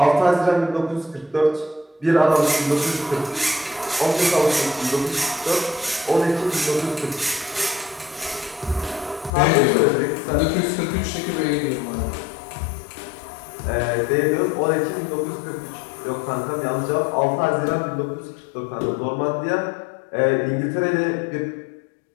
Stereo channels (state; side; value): drops out; right; at 9.3 s